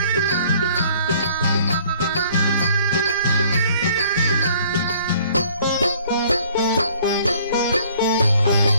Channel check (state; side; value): inverted; both; correlation -0.57